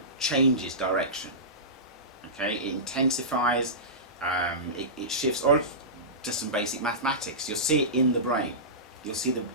changes direction. Okay, it intensifies, it shifts, or just some basic mathematics. You'll see it in the brain. We've seen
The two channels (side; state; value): both; normal; correlation -0.19